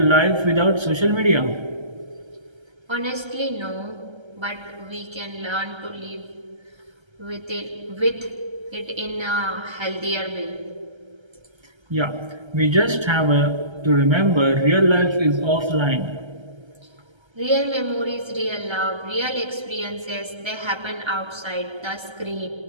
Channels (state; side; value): late; left; 1.3 ms